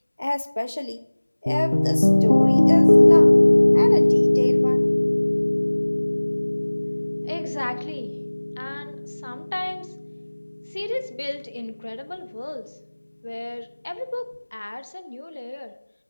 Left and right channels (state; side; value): inverted; both; correlation -1.00